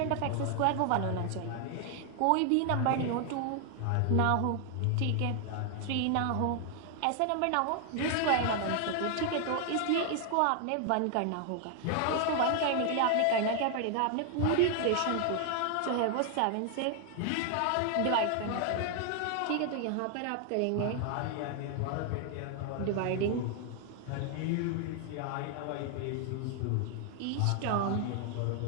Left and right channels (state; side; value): different; both; correlation 0.00